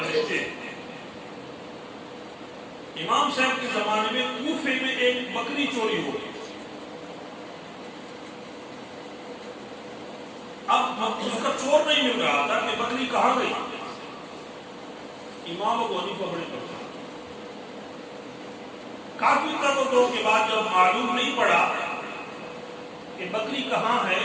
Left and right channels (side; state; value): both; identical; correlation 1.00